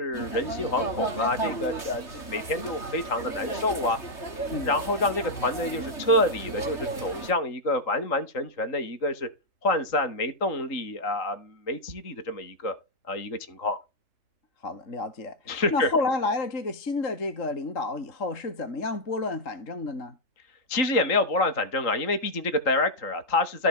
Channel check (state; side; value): late; right; 3.2 ms